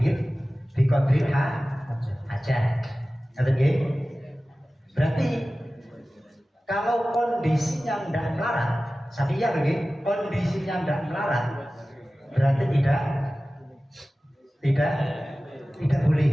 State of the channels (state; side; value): normal; both; correlation 0.96